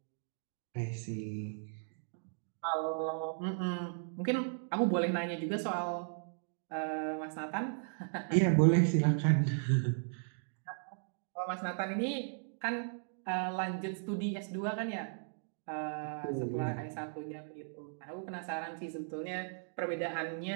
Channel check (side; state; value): left; silent; digital silence